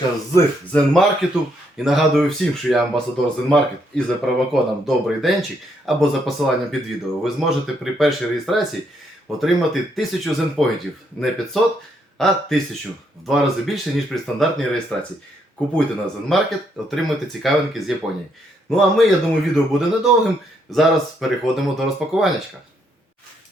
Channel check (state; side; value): normal; both; correlation 0.74